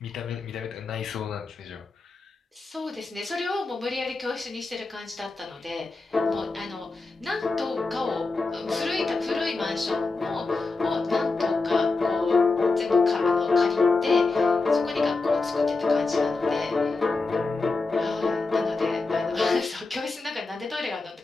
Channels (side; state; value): right; quieter; 3.7 dB